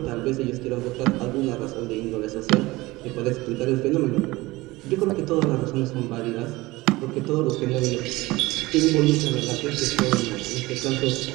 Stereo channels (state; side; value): quieter; left; 20.4 dB